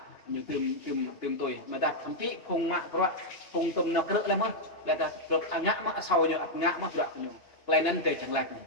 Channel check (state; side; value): late; right; 2.8 ms